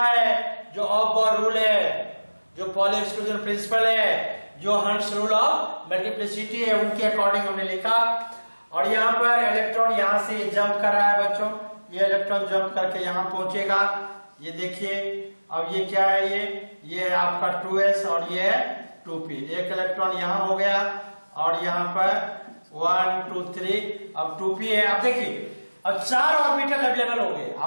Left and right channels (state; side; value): inverted; both; correlation -1.00